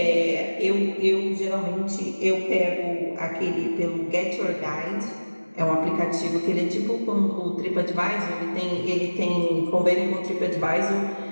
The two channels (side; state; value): both; inverted; correlation -1.00